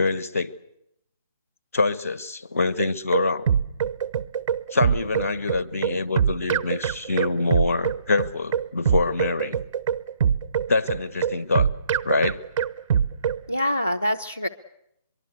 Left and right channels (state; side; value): inverted; both; correlation -0.68